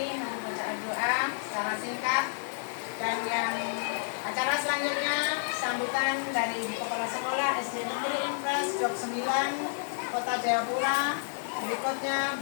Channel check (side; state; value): right; silent; digital silence